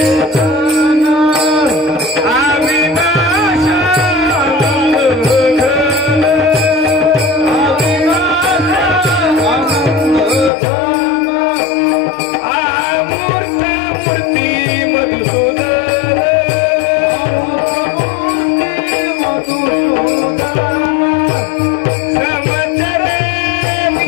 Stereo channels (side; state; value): right; drops out; at 10.5 s